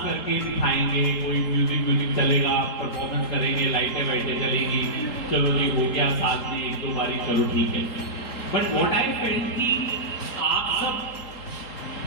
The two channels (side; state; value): right; late; 3.8 ms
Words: करके दिखाएंगे, कोई म्यूजिक चलेगा, परफॉर्मेंस करेंगे, लाइटें वाइटें चलेगी, चलो जी हो गया साथ में एक दो बारी, चलो ठीक है। बट व्हाट आई फेल्ट कि आप सब